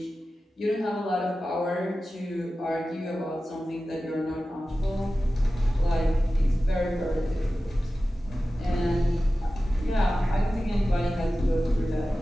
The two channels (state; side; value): normal; both; correlation 0.95